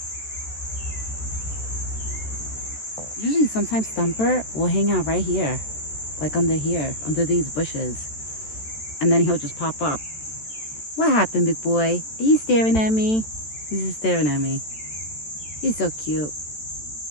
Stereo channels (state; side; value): late; right; 14 ms